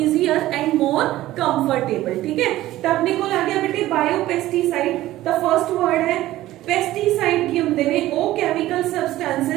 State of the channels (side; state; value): left; quieter; 15.5 dB